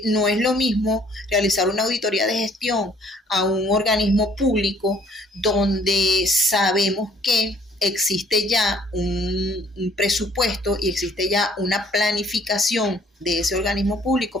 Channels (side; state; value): both; normal; correlation 0.60